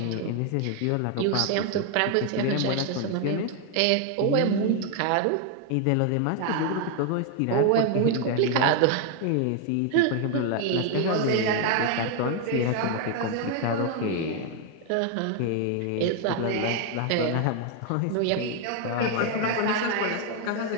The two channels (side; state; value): both; different; correlation 0.01